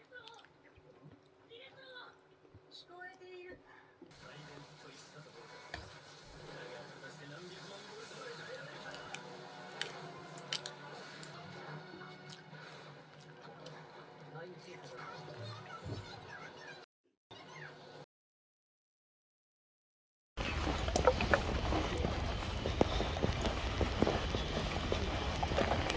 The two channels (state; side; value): identical; both; correlation 1.00